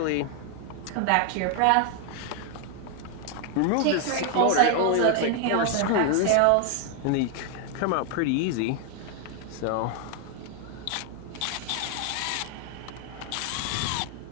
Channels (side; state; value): both; different; correlation 0.00